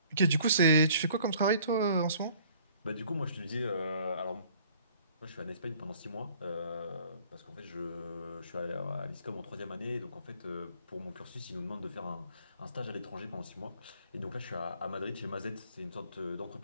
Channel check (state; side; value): inverted; both; correlation -0.56